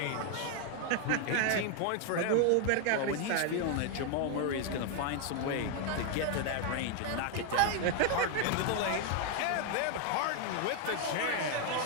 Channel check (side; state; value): both; different; correlation 0.00